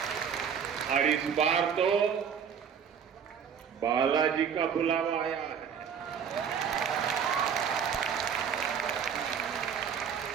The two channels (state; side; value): quieter; left; 7.4 dB